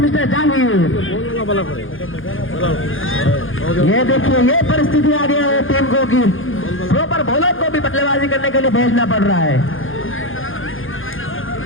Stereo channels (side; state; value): right; late; 0.59 ms